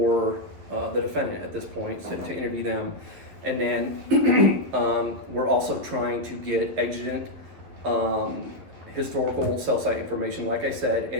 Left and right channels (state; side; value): late; left; 11 ms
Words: the defendant at this point to interview them, and then we're also trying to get exigent historical cell site information, like I said.